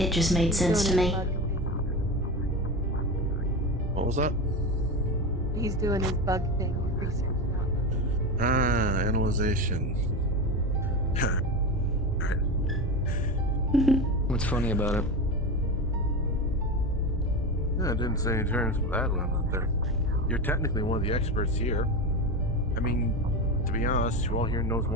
just made sense to me. What was that? He's doing his bug thing, research now. Ah, analyzation. What's funny about it? Yeah, I didn't say any terms of that one out there. You're technically one of the experts here. I mean, to be honest, who all here knows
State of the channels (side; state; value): both; normal; correlation 0.22